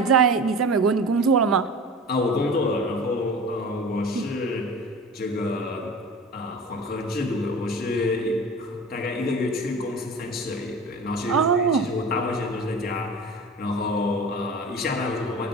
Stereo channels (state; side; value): normal; both; correlation 0.35